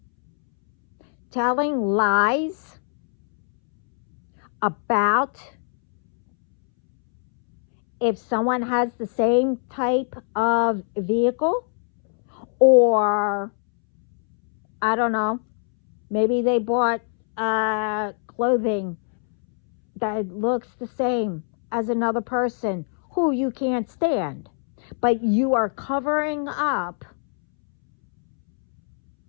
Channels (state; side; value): silent; right; 64 dB below the other